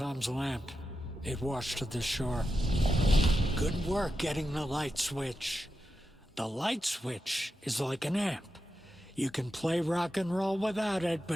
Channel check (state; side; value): normal; both; correlation 0.89